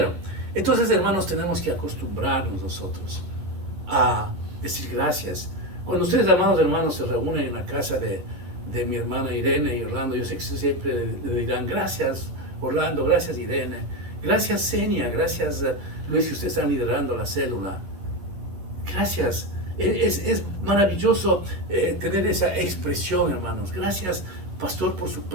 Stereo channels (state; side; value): late; left; 11 ms